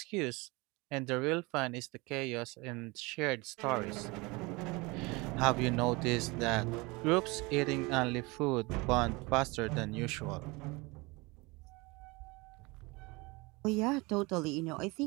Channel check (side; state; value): left; quieter; 25.2 dB